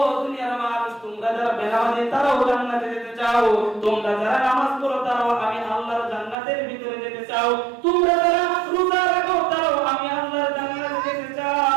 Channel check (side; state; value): left; drops out; at 6.4 s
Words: দুনিয়ার মানুষ তোমরা যারা বেনামাজি তারাও জান্নাতে যেতে চাও, তোমরা যারা নামাজ পড়ো তারাও আমি আল্লাহর জান্নাতের ভিতরে যেতে চাও, তোমরা যারা রোজা রাখো তারাও আমি আল্লাহর জান্নাতে যেতে